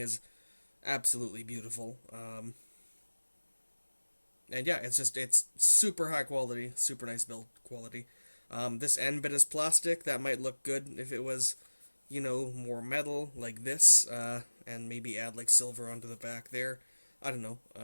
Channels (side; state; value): both; inverted; correlation -1.00